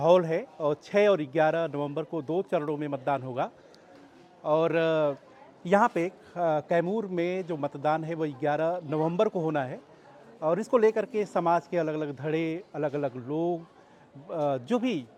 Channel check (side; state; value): both; identical; correlation 1.00